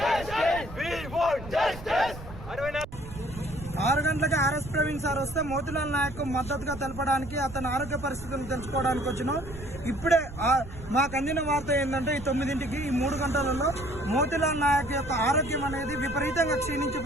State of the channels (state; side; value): noise; right; rumble, 13 dB below the sound